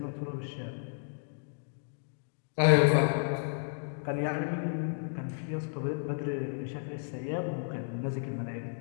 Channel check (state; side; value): silent; right; digital silence